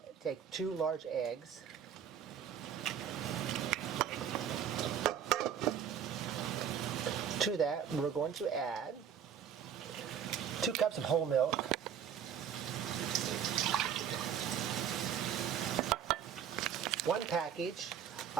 take 2 large eggs. To that, we're going to add 2 cups of whole milk, 1 package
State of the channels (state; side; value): quieter; left; 8.6 dB